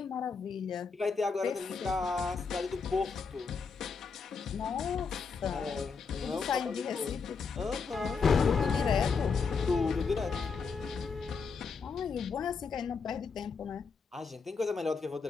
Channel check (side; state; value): right; quieter; 5.2 dB